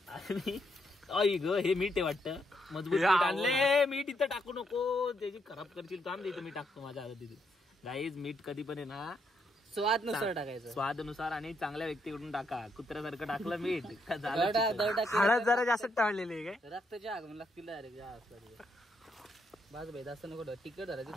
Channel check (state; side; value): normal; both; correlation 0.77